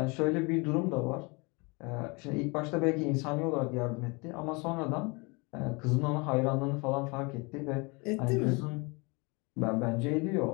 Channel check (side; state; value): right; quieter; 28.8 dB